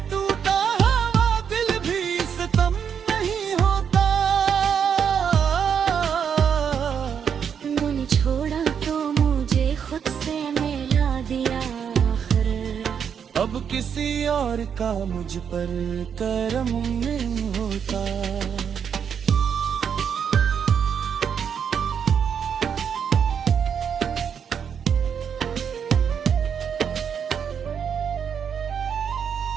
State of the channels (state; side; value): quieter; left; 7.5 dB